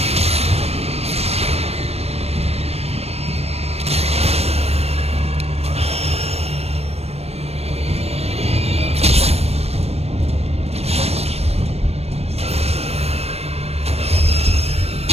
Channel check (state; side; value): late; left; 0.30 ms